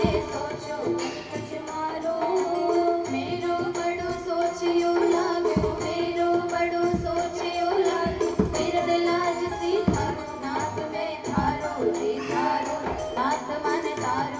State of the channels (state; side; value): identical; both; correlation 1.00